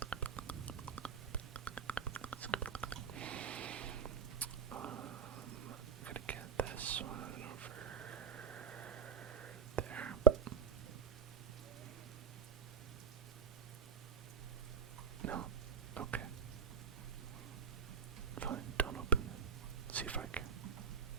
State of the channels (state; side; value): quieter; left; 6.5 dB